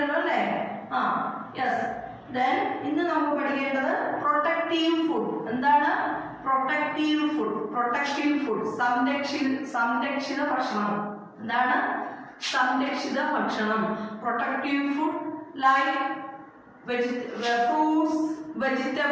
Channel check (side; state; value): both; identical; correlation 1.00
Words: അല്ലേ? യെസ്. ദെൻ ഇന്ന് നമുക്ക് പഠിക്കേണ്ടത് പ്രൊട്ടക്റ്റീവ് ഫുഡ്. എന്താണ് പ്രൊട്ടക്റ്റീവ് ഫുഡ്? പ്രൊട്ടക്റ്റീവ് ഫുഡ് സംരക്ഷിത ഭക്ഷണം. എന്താണ് സംരക്ഷിത ഭക്ഷണം? Protective food like fruits,